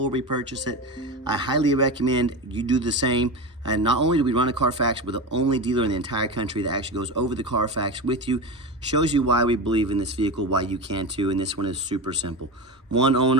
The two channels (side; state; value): both; normal; correlation 0.22